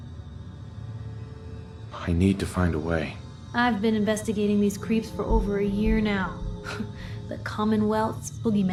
I need to find a way. I've been investigating these creeps for over a year now. The Commonwealth's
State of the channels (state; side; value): identical; both; correlation 1.00